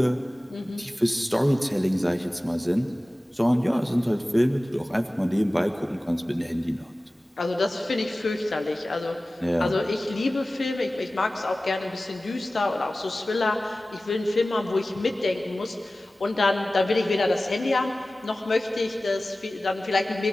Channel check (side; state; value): both; normal; correlation 0.97